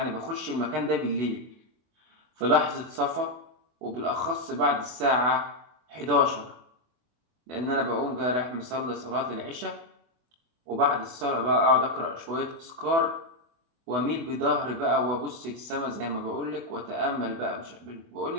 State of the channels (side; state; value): left; late; 24 ms